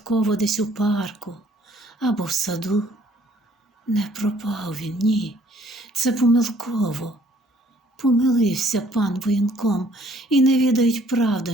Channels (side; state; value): both; normal; correlation 0.60